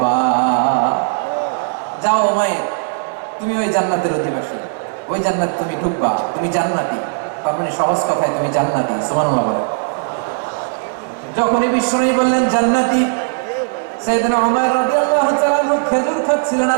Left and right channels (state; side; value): silent; left; digital silence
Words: যাও উমাইর, তুমি ওই জান্নাতের অধিবাসী, ওই জান্নাত তুমি ঢুকবা, তুমি জান্নাতি। তার মানে সহজ কথায় তুমি জান্নাতি। সুবহানাল্লাহ বলেন। যখনই বিশ্বনবী বললেন জান্নাতি, সাইয়েদনা উমাইর রাদিয়াল্লাহু তাআলা খেজুর খাচ্ছিলেন